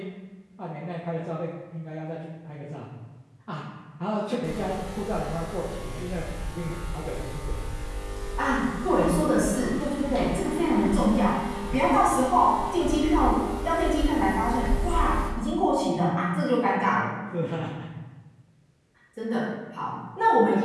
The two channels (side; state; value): both; identical; correlation 1.00